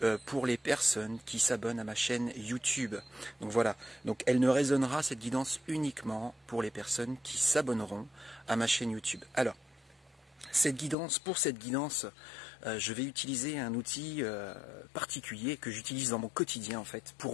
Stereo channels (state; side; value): drops out; right; at 11.0 s